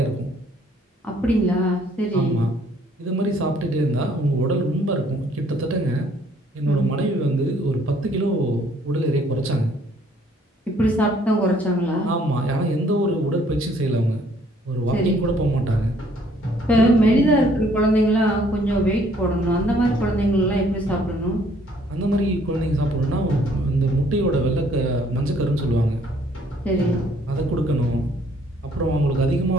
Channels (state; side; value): normal; both; correlation 0.62